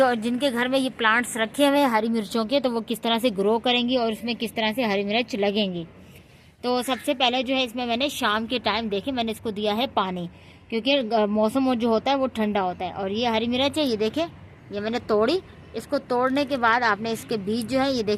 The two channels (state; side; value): identical; both; correlation 1.00